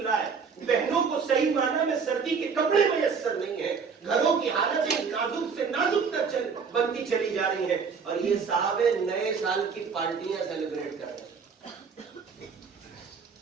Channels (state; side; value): quieter; left; 5.7 dB